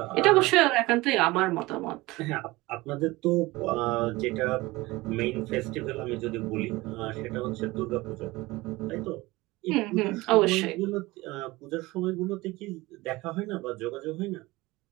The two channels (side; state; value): left; quieter; 20.7 dB